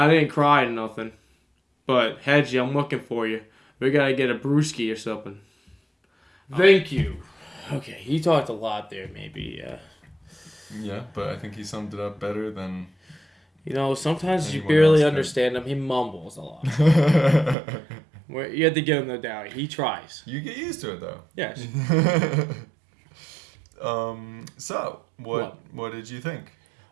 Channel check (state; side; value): drops out; left; at 17.6 s